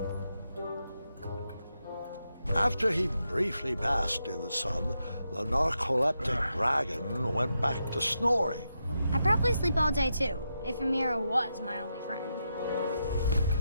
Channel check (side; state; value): both; inverted; correlation -0.84